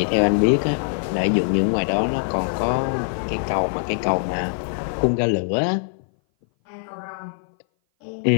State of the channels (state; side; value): silent; right; 59 dB below the other